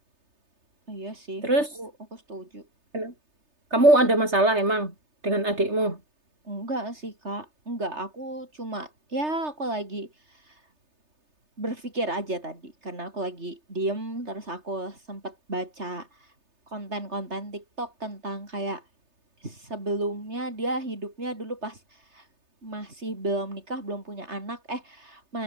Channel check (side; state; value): left; late; 3.3 ms